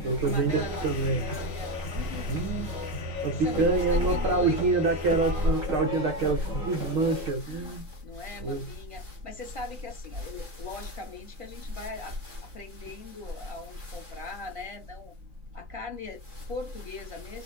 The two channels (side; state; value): left; late; 3.7 ms